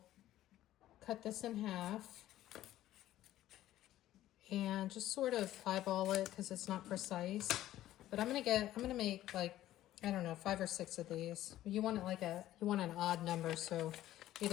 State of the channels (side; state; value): right; quieter; 13.8 dB